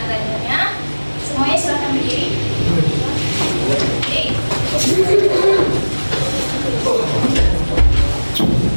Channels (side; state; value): both; inverted; correlation -1.00